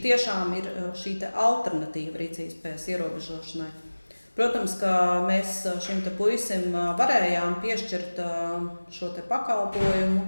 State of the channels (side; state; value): both; inverted; correlation -1.00